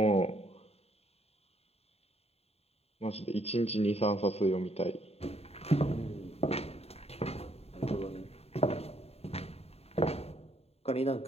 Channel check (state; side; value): late; right; 0.30 ms